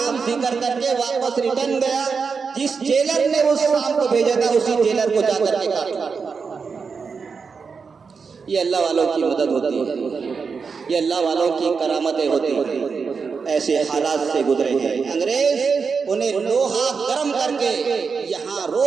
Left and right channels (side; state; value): left; quieter; 5.3 dB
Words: जिक्र करके वापस रिटर्न गया। जिस जेलर ने उस सांप को भेजा था, उसी जेलर को जाकर के काटा। ये अल्लाह वालों की मदद होती है, ये अल्लाह वालों की करामतें होती हैं। ऐसे हालात से गुजरे हैं। अंग्रेज उन्हें लोहा गर्म करके यहाँ